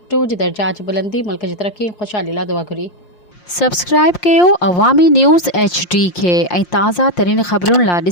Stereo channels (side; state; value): right; late; 5.7 ms